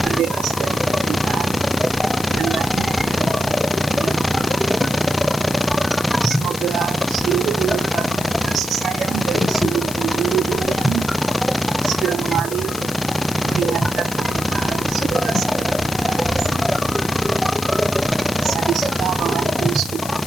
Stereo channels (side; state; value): left; noise; hiss, 10 dB below the sound